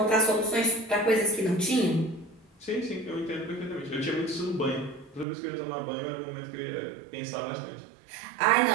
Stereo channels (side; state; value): left; drops out; at 5.2 s